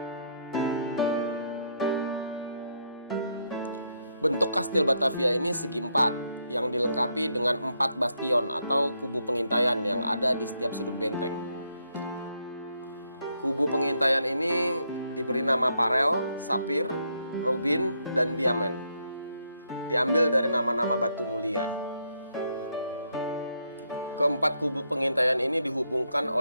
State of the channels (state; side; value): inverted; both; correlation -0.76